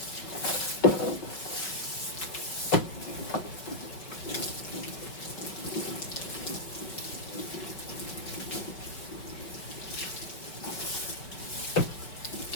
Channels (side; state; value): right; late; 5.3 ms